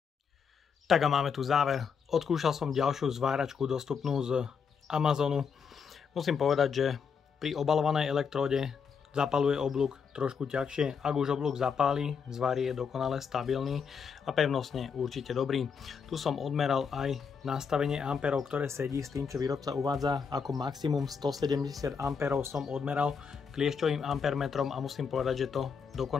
Tak a máme tu záver. Odskúšal som ďalšiu zváračku dostupnú z Amazonu. Musím povedať, že pri obalovanej elektróde zapaluje oblúk trošku ťažšie. Ak už oblúk zapáli, zvar je dokonale stabilný a pevnostne určite dobrý. Tu som odmeral aj nastavenie amperov, ktoré sedí s tým, čo výrobca uvádza. Ako maximum 170 amperov som odmeral kliešťovým ampermetrom a musím povedať, že to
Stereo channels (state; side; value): quieter; right; 6.2 dB